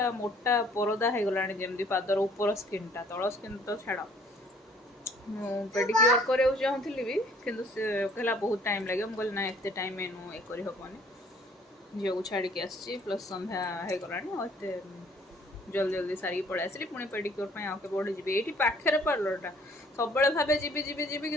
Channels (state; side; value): normal; both; correlation 0.58